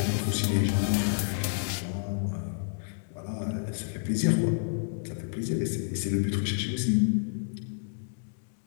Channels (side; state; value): right; silent; digital silence